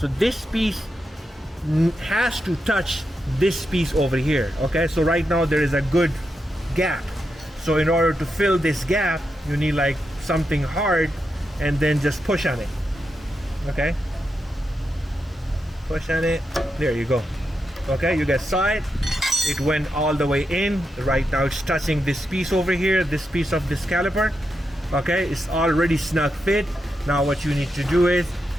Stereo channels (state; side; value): normal; both; correlation 0.86